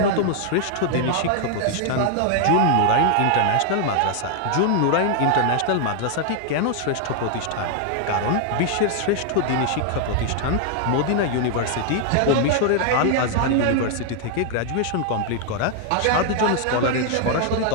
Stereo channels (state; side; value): different; both; correlation 0.00